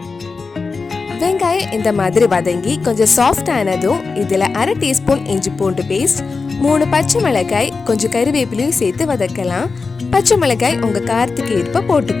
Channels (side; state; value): right; quieter; 4.4 dB